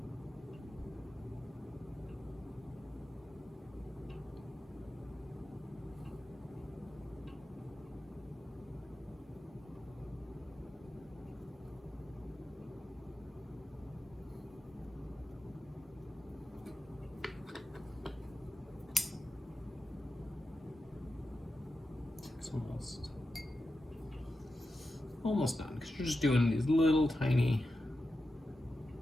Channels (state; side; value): normal; both; correlation 0.90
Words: It's almost done, because you're just doing these little tiny